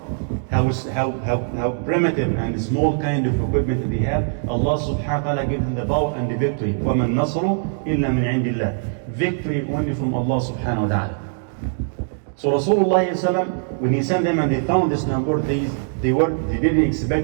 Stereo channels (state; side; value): silent; left; digital silence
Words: how primitive and small kind of equipment they have, Allah subhanahu wa ta'ala gives them the power and the victory. وَمَا النَّصْرُ إِلَّا مِنْ عِنْدِ اللَّهِ. Victory only from Allah subhanahu wa ta'ala. So Rasulullah when he sent them and they found this number, they didn't